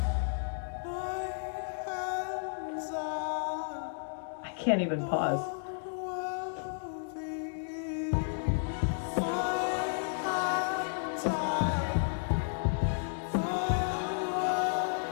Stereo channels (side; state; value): right; silent; digital silence